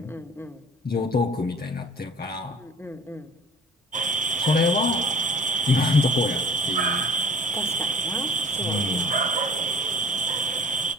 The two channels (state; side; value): normal; both; correlation 0.47